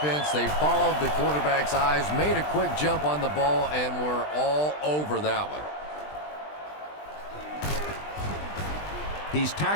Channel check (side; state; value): right; late; 20 ms